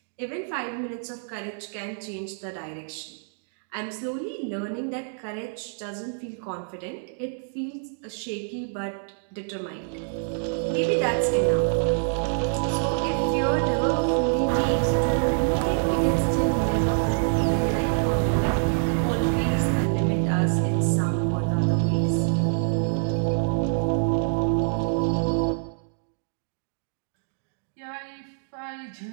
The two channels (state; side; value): silent; left; digital silence